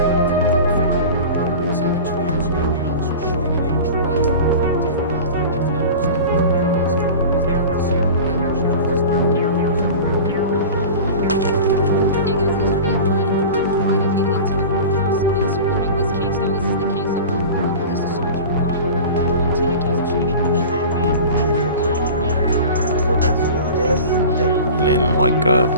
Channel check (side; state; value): both; inverted; correlation -0.35